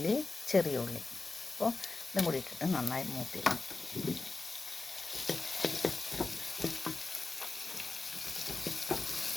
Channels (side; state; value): right; quieter; 3.7 dB